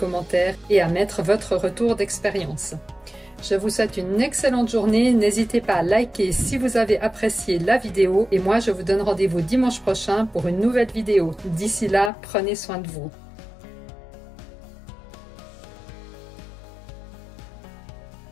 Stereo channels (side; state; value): right; drops out; at 12.1 s